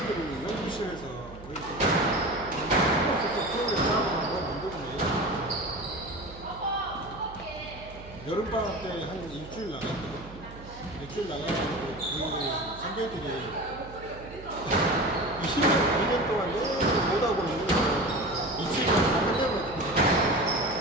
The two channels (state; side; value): noise; right; hum, 16 dB below the sound